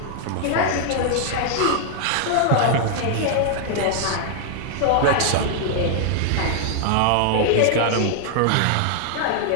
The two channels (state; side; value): different; both; correlation 0.00